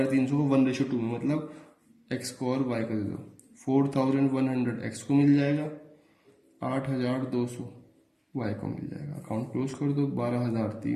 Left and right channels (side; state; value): both; identical; correlation 1.00